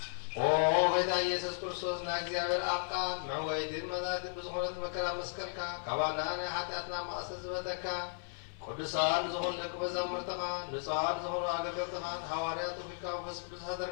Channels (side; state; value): right; silent; digital silence